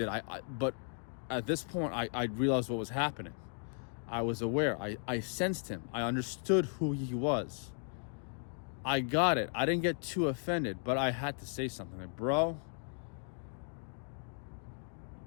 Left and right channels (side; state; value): right; silent; 54 dB below the other